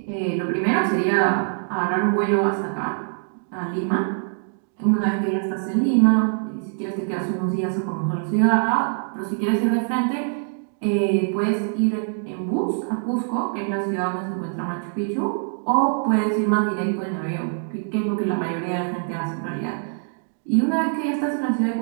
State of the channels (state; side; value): silent; left; digital silence